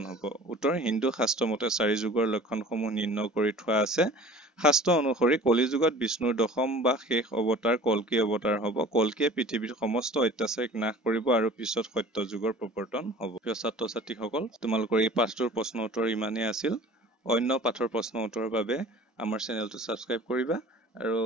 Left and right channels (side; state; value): both; normal; correlation 0.45